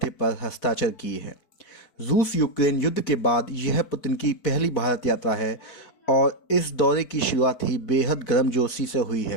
पर हस्ताक्षर किए हैं। रूस यूक्रेन युद्ध के बाद यह पुतिन की पहली भारत यात्रा है और इस दौरे की शुरुआत ही बेहद गर्मजोशी से हुई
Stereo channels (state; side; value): late; right; 4.5 ms